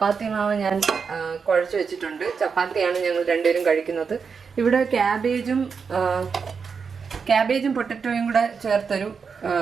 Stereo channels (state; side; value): quieter; left; 5.7 dB